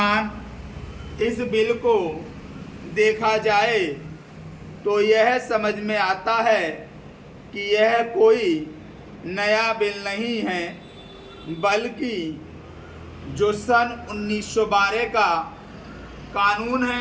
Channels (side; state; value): both; identical; correlation 1.00